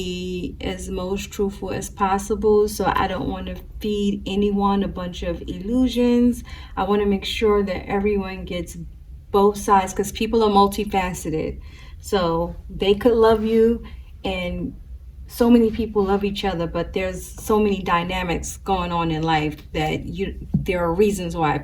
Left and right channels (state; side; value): identical; both; correlation 1.00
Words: as most truthful as possible. So I don't want to feed anyone a bunch of illusions. I want to make sure that everyone gets both sides, because people are multifaceted. So they could love you and so many people love each other, but there's so many dynamics going on in life that there are reasons why